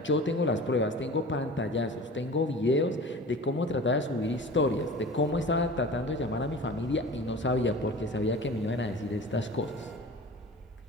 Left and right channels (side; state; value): both; normal; correlation 0.38